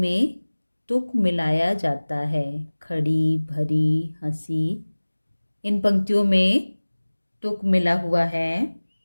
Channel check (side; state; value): both; inverted; correlation -1.00